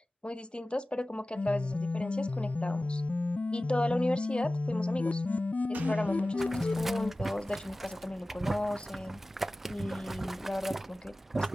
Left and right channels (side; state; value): both; normal; correlation 0.96